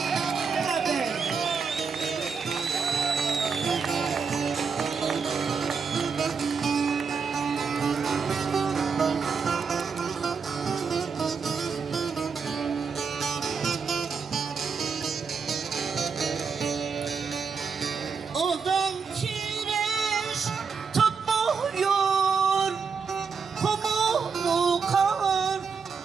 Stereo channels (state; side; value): quieter; left; 5.6 dB